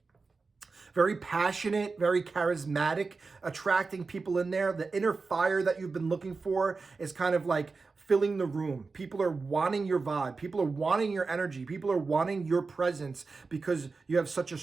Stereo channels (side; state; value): left; quieter; 4.2 dB